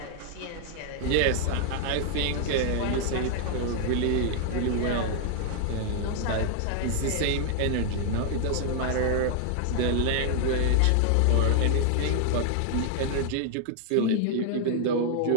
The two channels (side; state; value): both; different; correlation 0.00